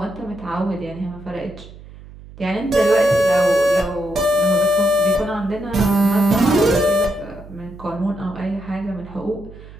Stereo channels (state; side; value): noise; right; hum, 18 dB below the sound